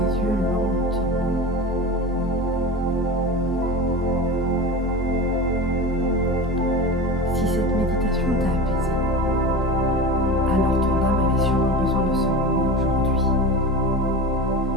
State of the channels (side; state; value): both; normal; correlation 0.30